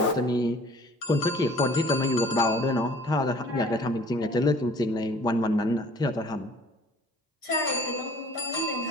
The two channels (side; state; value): both; normal; correlation 0.51